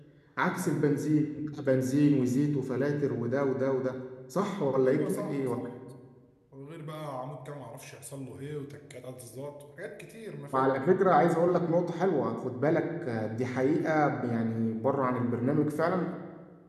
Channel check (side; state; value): both; identical; correlation 1.00